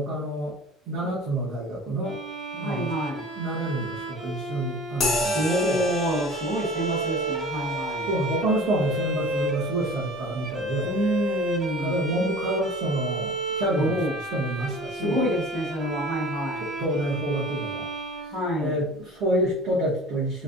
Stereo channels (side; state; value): both; normal; correlation 0.41